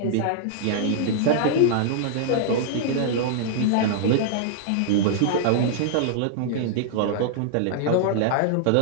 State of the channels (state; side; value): different; both; correlation -0.01